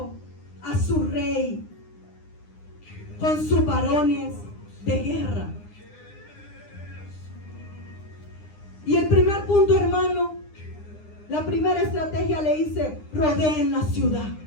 a su rey, con sus varones de guerra. Y el primer punto, hermano, la primera estrategia le dice: rodeen la ciudad.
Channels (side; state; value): right; late; 9.8 ms